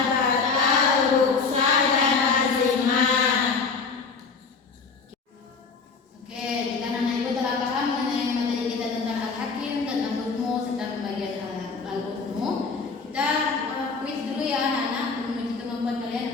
batal, rukhsah dan azimah. Oke, jika anak ibu telah paham mengenai materi kita tentang al-hakim, tentang hukum serta pembagian al-hukum, kita kuis dulu ya anak-anak menuju kemampuan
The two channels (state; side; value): quieter; right; 4.8 dB